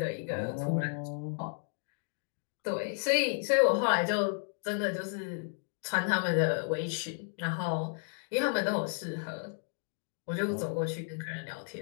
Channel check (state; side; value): silent; right; 56 dB below the other